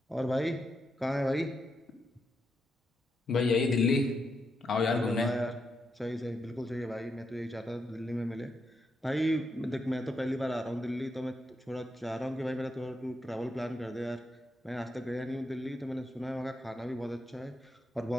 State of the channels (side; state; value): both; normal; correlation 0.82